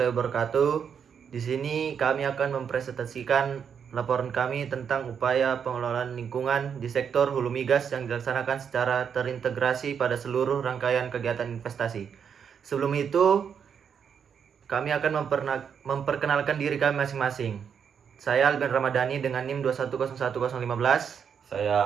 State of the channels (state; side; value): quieter; left; 7.3 dB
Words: wabarakatuh. Di sini kami akan mempresentasikan laporan kami tentang upaya pengelolaan lingkungan di sektor hulu migas yang dilaksanakan secara terintegrasi pada seluruh rangkaian kegiatan investasi. Sebelum itu, kami akan memperkenalkan diri kami masing-masing. Saya Alben Ramadhani dengan NIM 2101015.